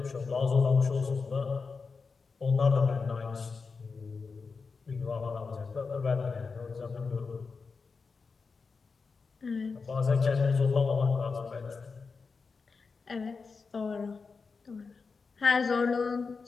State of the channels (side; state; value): right; quieter; 4.7 dB